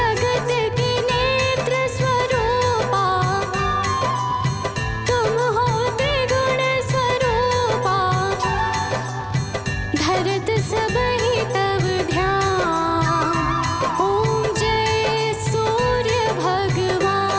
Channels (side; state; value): both; identical; correlation 1.00